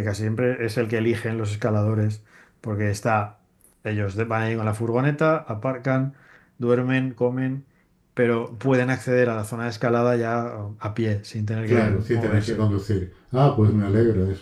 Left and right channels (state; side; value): identical; both; correlation 1.00